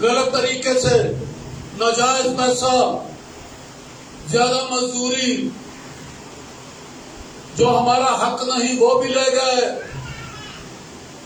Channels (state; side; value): identical; both; correlation 1.00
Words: طریقے سے، ناجائز پیسہ، زیادہ مزدوری، جو ہمارا حق نہیں وہ بھی لے گئے،